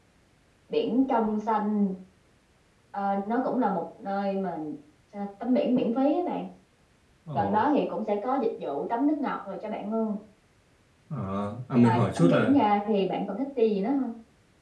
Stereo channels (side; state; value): both; identical; correlation 1.00